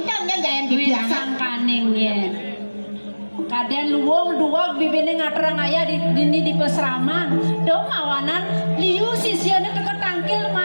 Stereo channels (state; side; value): inverted; both; correlation -1.00